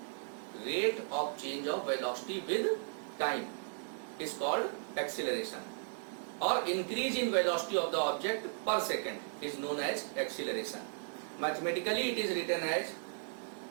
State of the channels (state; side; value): silent; left; digital silence